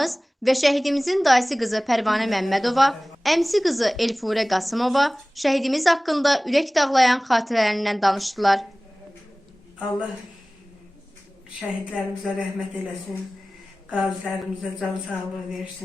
və şəhidimizin dayısı qızı Pərvanə Məmmədova, əmsi qızı Elfurə Qasımova şəhidimiz haqqında ürək dağlayan xatirələrindən danışdılar. Allah şəhidlərimizə rəhmət eləsin, qazilərimizə can sağlığı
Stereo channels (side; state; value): both; normal; correlation 0.98